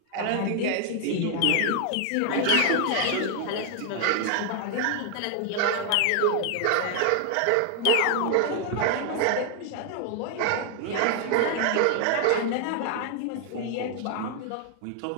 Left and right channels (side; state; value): both; different; correlation 0.00